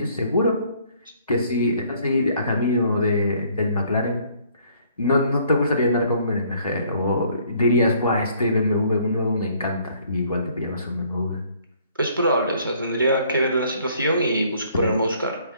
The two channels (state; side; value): inverted; both; correlation -0.62